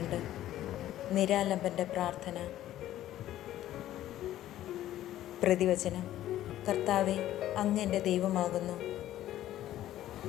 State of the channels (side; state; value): right; quieter; 13.3 dB